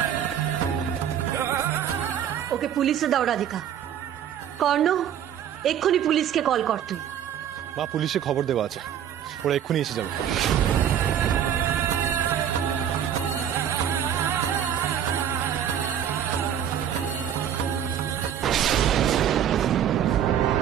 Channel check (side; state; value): left; quieter; 9.5 dB